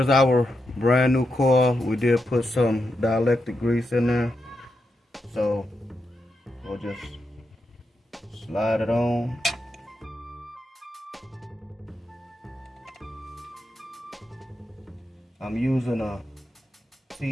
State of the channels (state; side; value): normal; both; correlation 0.86